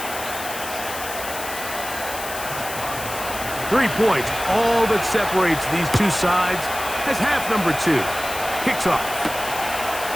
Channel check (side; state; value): left; noise; hiss, 9 dB below the sound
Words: 3 points, all that separates these two sides, as half number 2 kicks off.